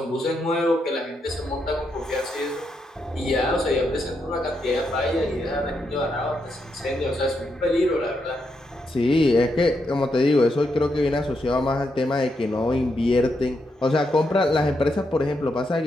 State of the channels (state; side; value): normal; both; correlation 0.81